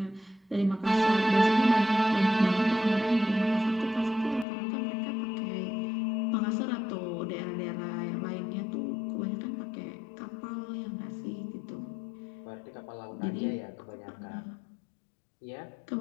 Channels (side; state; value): right; drops out; at 4.5 s